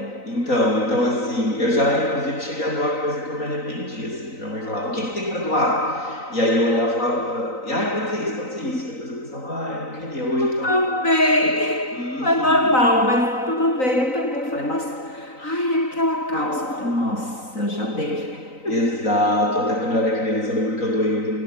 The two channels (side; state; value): right; late; 3.9 ms